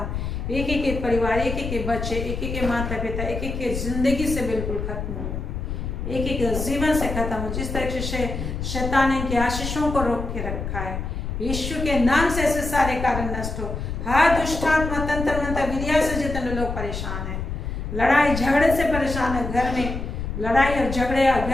एक एक के परिवार, एक एक के बच्चे, एक एक के माता पिता, एक एक के जिंदगी से बिल्कुल खत्म हो, एक एक जीवन से खत्म हो। जिस तरह से शैतान इनके आशीषों को रोक के रखा है, यीशु के नाम से ऐसे सारे कारण नष्ट हो। हर दुष्टात्मा, तंत्र मंत्र, विद्या से जितने लोग परेशान हैं, लड़ाई झगड़े से परेशान है, घर में लड़ाई और झगड़े और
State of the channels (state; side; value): noise; left; rumble, 5 dB below the sound